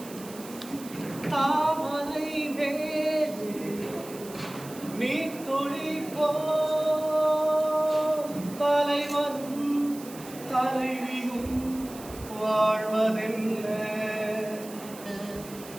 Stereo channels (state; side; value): noise; right; hiss, 17 dB below the sound